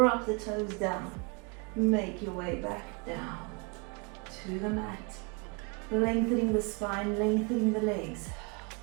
the toes down. Make your way back down to the mat. Lengthening the spine, lengthening the legs.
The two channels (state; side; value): quieter; left; 31.5 dB